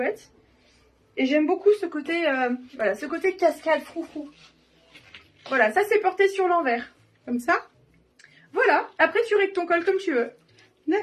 Et j'aime beaucoup ce côté, voilà, ce côté cascade, froufrou. Voilà, ça, c'est porté sur l'envers. Comme ça. Voilà. Après, tu règles ton col comme tu veux.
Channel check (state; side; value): identical; both; correlation 1.00